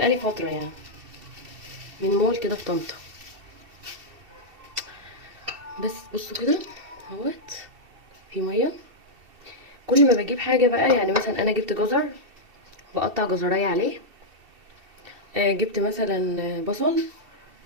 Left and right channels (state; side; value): late; left; 2.7 ms